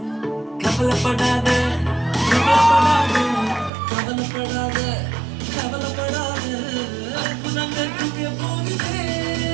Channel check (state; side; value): drops out; left; at 3.7 s